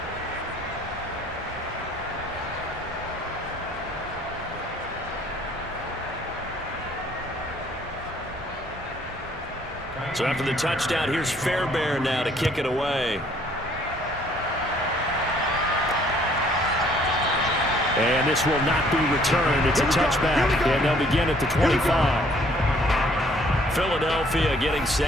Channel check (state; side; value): normal; both; correlation 0.61